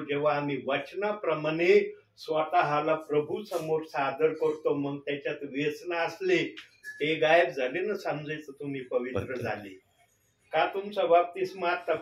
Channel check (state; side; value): identical; both; correlation 1.00